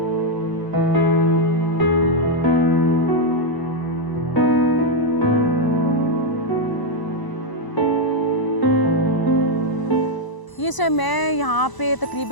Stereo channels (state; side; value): late; right; 1.0 ms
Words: ये सर मैं यहाँ पे